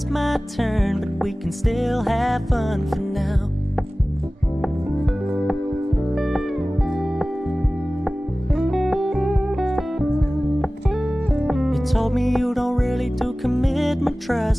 my turn, but we can still have fun for now. You told me you don't really do commitment,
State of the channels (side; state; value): both; normal; correlation 0.97